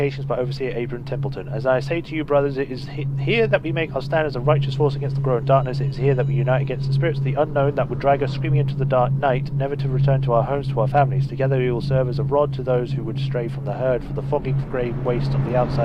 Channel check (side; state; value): both; identical; correlation 1.00